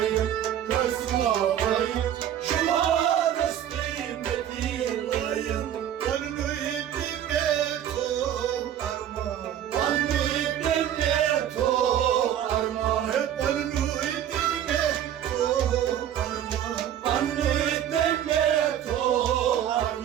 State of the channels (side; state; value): left; quieter; 10.5 dB